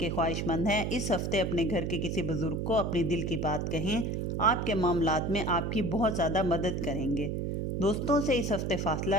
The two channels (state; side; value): noise; right; hum, 1 dB below the sound